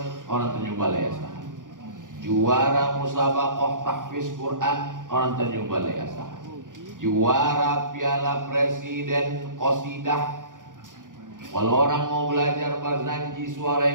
orang Tanjung Balai Asahan, juara musabaqah tahfiz Quran orang Tanjung Balai Asahan, juara Piala Presiden Qasidah. Kalau orang mau belajar barzanji suara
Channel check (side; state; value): left; late; 0.88 ms